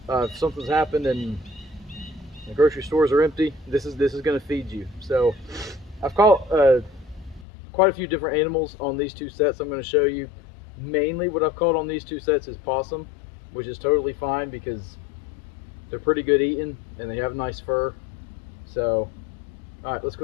if something's happened and the grocery stores are empty, this is going to feed you. So I've caught quite a few different animals on these two sets I'm going to show you. Mainly what I've caught on these two sets is possum, which is totally fine because they're pretty good eating and they have nice fur. So, all right, let's go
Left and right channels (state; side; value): drops out; right; at 7.5 s